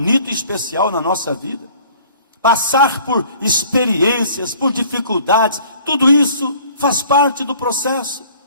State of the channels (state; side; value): inverted; both; correlation -0.53